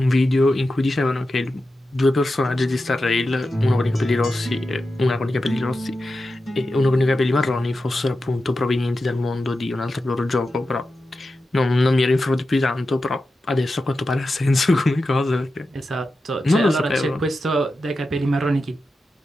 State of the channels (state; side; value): normal; both; correlation 0.91